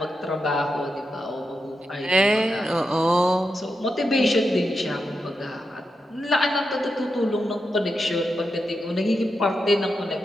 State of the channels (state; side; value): normal; both; correlation 0.87